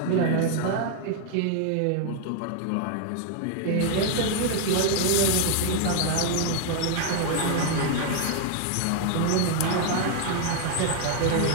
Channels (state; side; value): different; both; correlation 0.00